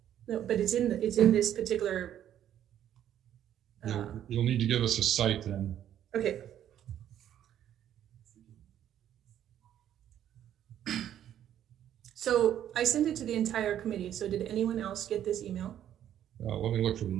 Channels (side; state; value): left; quieter; 10.8 dB